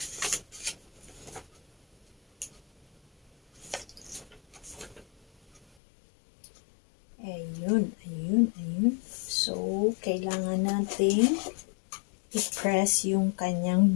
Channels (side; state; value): right; drops out; at 5.6 s